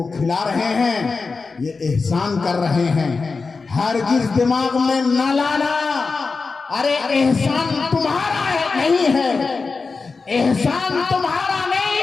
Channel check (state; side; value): quieter; right; 4.4 dB